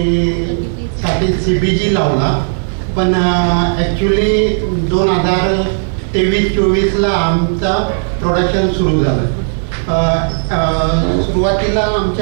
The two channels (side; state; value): left; silent; digital silence